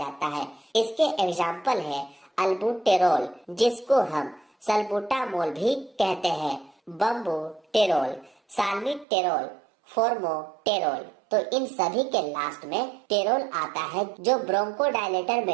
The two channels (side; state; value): left; drops out; at 9.1 s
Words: है। इसके एग्जाम्पल है अल्बुटेरोल, जिसको हम सल्बुटामोल भी कहते हैं, बम्बुटेरोल, साल्मीटेरोल, फोर्मोटेरोल। तो इन सभी के लास्ट में टेरोल आता है, जो ब्रोंकोडायलेटर